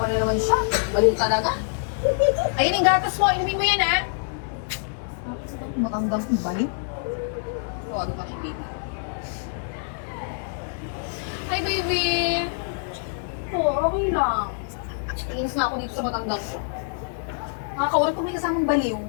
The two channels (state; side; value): silent; right; digital silence